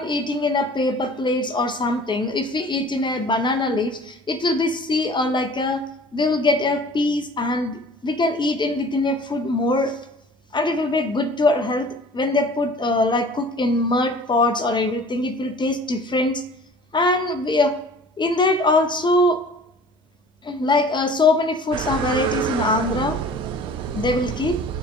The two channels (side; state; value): both; normal; correlation 0.46